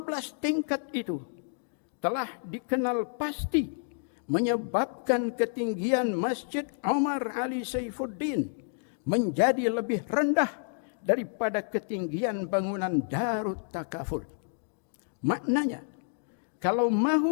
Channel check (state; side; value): silent; right; digital silence